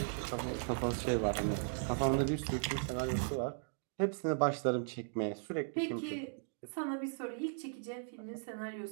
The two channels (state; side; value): silent; left; digital silence